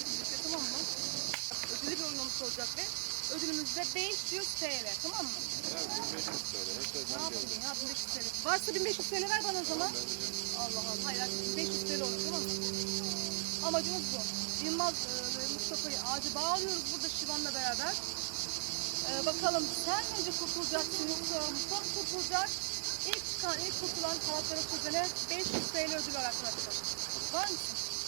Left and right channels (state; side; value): silent; left; digital silence